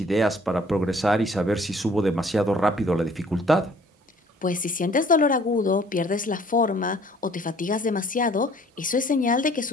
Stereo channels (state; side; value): normal; both; correlation 0.56